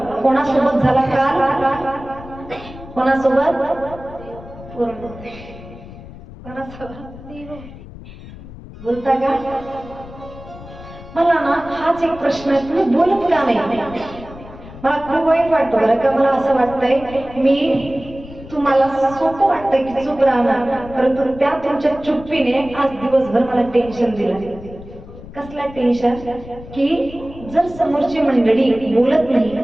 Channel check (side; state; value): left; noise; rumble, 16 dB below the sound